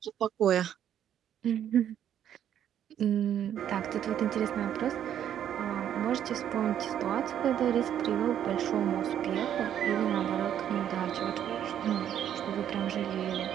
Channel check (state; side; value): quieter; left; 10.0 dB